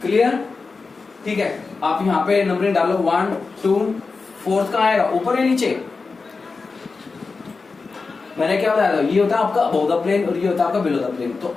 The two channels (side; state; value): right; quieter; 4.3 dB